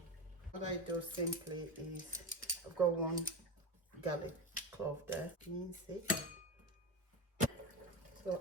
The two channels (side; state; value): both; normal; correlation 0.20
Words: What I do simply is, I've got one garlic clove there, mince it.